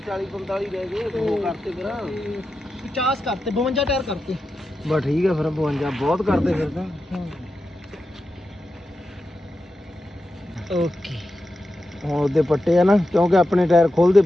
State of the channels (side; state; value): both; normal; correlation 0.90